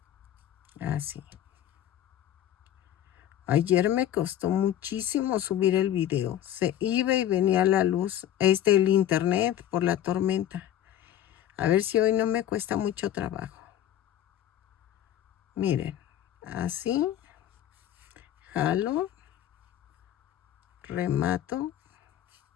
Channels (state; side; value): quieter; right; 11.4 dB